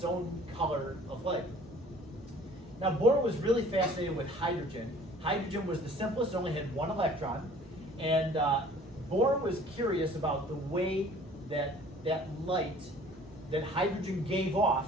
own color of light. Now Bohr was really fascinated with hydrogen. Hydrogen was the simplest, it only had one electron. And Bohr was curious about the way that light that hydrogen gave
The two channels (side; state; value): both; normal; correlation 0.51